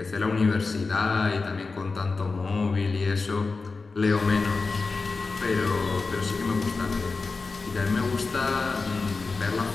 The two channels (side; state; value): right; quieter; 4.1 dB